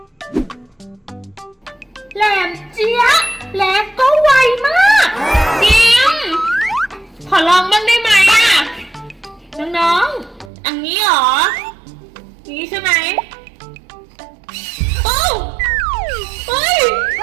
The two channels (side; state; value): left; drops out; at 10.5 s